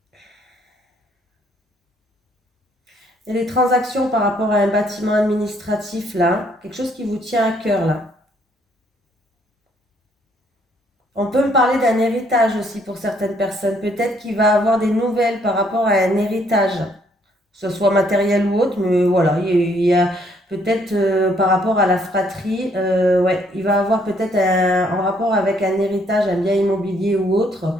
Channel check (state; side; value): normal; both; correlation 0.67